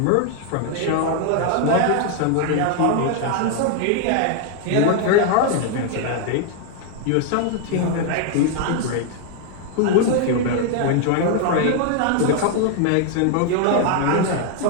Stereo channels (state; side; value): different; both; correlation 0.00